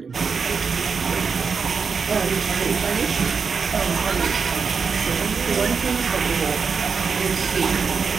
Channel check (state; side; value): quieter; left; 5.5 dB